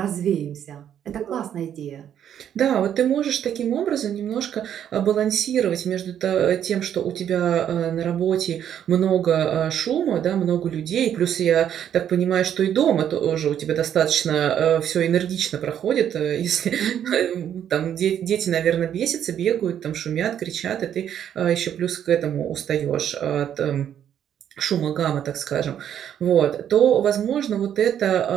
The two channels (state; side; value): quieter; left; 9.7 dB